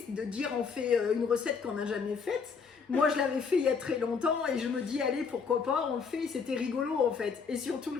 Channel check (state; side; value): quieter; right; 5.6 dB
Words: de dire on fait une recette qu'on n'a jamais faite. Moi je l'avais fait il y a très longtemps et je me dis allez pourquoi pas, on le fait, c'était rigolo en fait. Et surtout